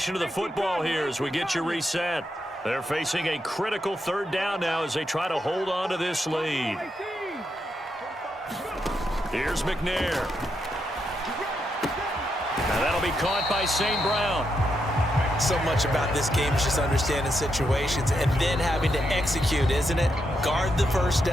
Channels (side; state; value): both; normal; correlation 0.82